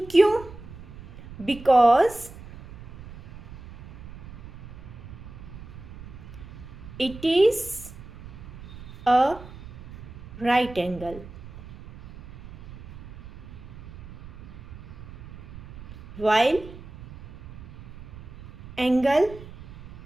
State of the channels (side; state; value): right; noise; rumble, 15 dB below the sound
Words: क्यों, because it is a right angle, while angle